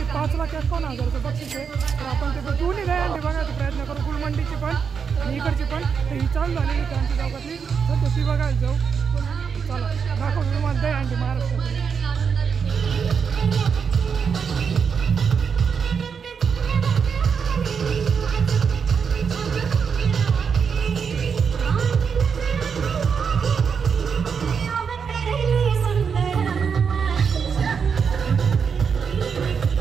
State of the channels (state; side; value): quieter; left; 6.4 dB